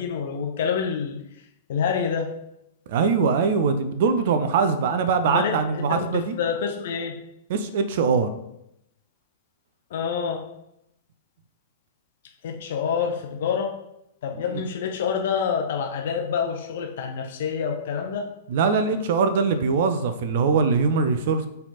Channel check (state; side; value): inverted; both; correlation -0.35